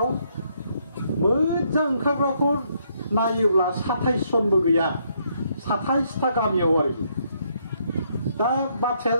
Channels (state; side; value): inverted; both; correlation -0.73